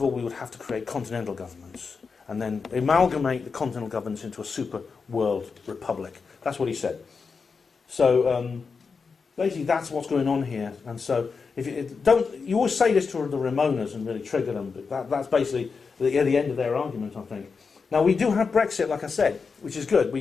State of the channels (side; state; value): right; quieter; 5.1 dB